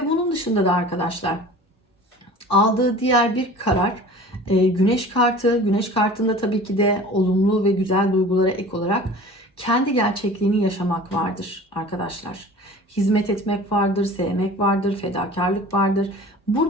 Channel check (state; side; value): normal; both; correlation 0.42